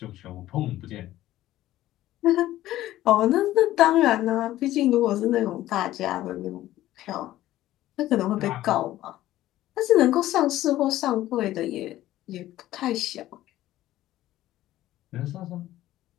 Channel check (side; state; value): right; quieter; 14.6 dB